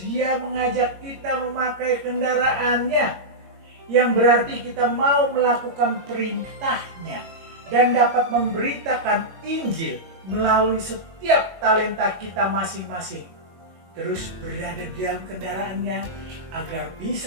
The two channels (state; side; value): late; left; 21 ms